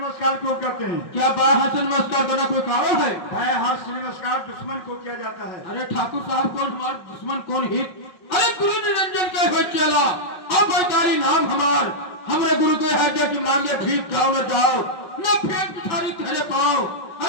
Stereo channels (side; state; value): right; late; 5.5 ms